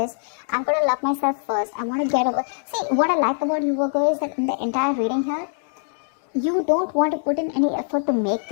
I'm going to love myself first. I want to get over. See, what I like about you, Virgo, is that in the entire reading here, you don't want to put in any effort to make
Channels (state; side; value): silent; right; 64 dB below the other